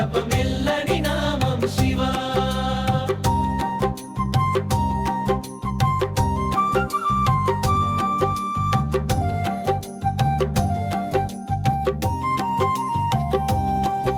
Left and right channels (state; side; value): identical; both; correlation 1.00